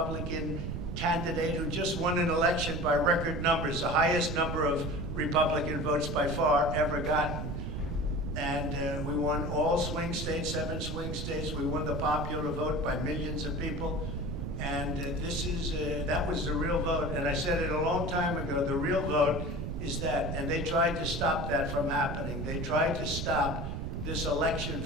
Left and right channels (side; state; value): right; noise; rumble, 4 dB below the sound